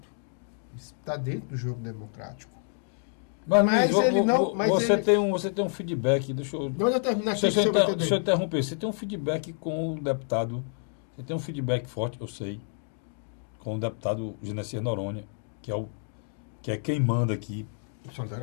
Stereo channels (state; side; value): silent; right; 59 dB below the other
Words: Está dentro do jogo democrático. Mas ele não. Você tem um feedback. Deixa eu terminar aqui. Deixa eu interromper. Você tem um feedback com o deputado. Você tem um feedback forte, eu sei, com o deputado Genesias Noronha, que é quem manda aqui.